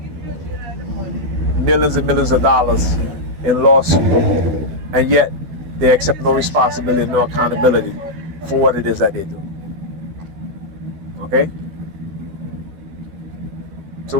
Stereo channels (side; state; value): left; late; 12 ms